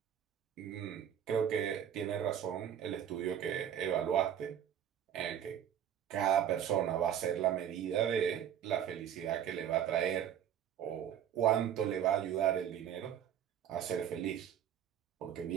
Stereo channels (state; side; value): quieter; left; 9.7 dB